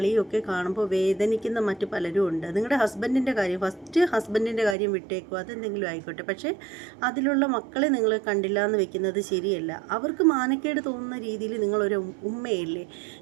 ഒക്കെ കാണുമ്പോൾ വേദനിക്കുന്ന മറ്റു പലരും ഉണ്ട്. നിങ്ങളുടെ ഹസ്ബൻഡിൻ്റെ കാര്യം, ഫസ്റ്റ് ഹസ്ബൻഡിൻ്റെ കാര്യം വിട്ടേക്കുക, അതെന്തെങ്കിലും ആയിക്കോട്ടെ. പക്ഷേ അതിലുള്ള മക്കളെ നിങ്ങൾ കണ്ടില്ല എന്ന് വെക്കുന്നത് ശരിയല്ല. അവർക്ക് മാനക്കേട് തോന്നുന്ന രീതിയിൽ നിങ്ങളൊരു ഉമ്മയല്ലേ,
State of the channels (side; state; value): left; drops out; at 4.8 s